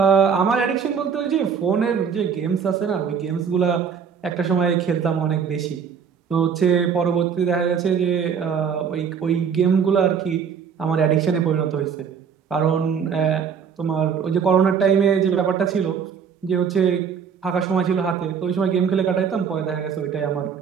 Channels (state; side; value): quieter; left; 6.8 dB